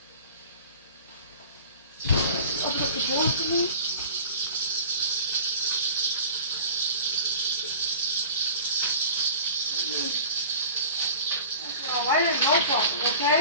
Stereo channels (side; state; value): both; inverted; correlation -0.41